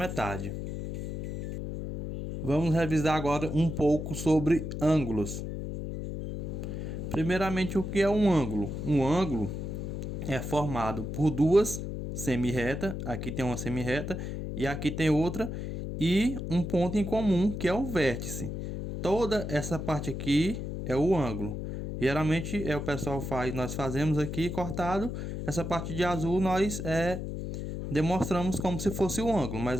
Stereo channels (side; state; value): left; noise; hum, 5 dB below the sound